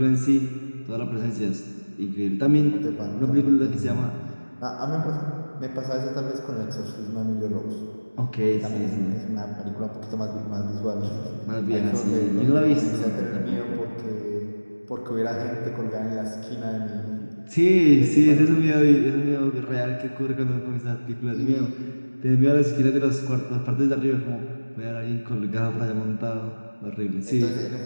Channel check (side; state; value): both; inverted; correlation -1.00